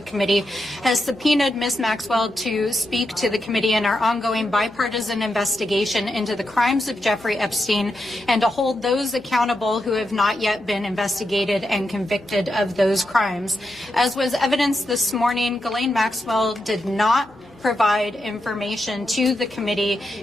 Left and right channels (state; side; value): noise; left; hum, 27 dB below the sound